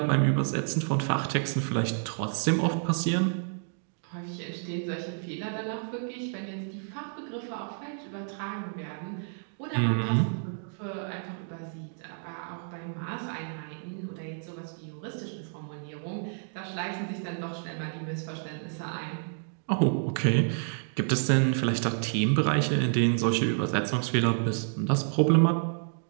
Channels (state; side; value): silent; left; digital silence